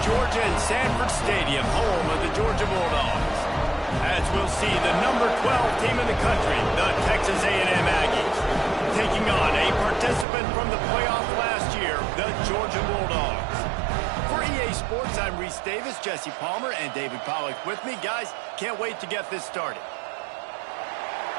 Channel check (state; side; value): drops out; left; at 10.2 s